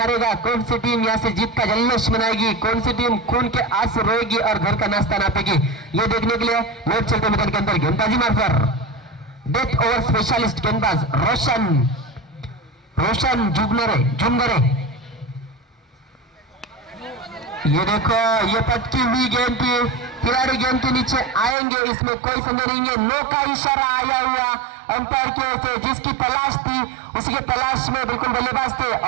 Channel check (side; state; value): left; drops out; at 21.6 s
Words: कौन सी टीम यहाँ से जीत का जल्लोष मनाएगी, कौन सी टीम खून के आंसू रोएगी और घर का नाश्ता नापेगी, ये देखने के लिए लोग चलते मैदान के अंदर गेंदबाजी मार्फत डेथ ओवर स्पेशलिस्ट गेंदबाज रोशन जुमगरे। ये देखो ये पटकी हुई गेंद थी, खिलाड़ी गेंद के नीचे आएंगे, इसमें कोई संदेह नहीं है। नो का इशारा आया हुआ अंपायर की ओर से, जिसकी तलाश थी उसी के तलाश में बिल्कुल बल्लेबाज थे,